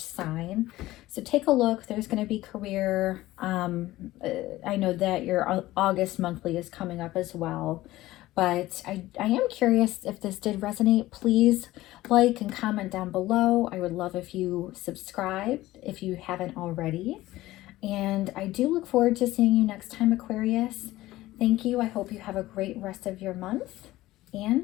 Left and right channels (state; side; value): quieter; right; 16.8 dB